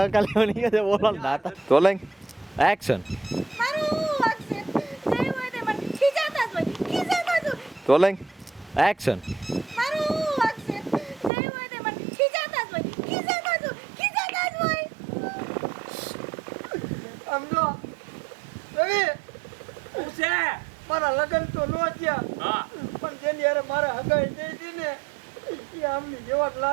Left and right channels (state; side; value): drops out; left; at 11.3 s